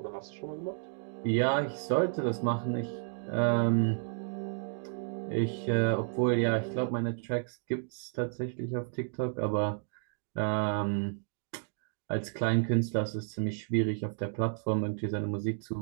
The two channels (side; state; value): left; silent; digital silence